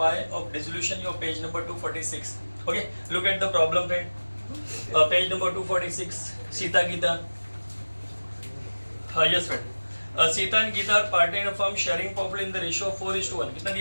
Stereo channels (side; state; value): both; inverted; correlation -1.00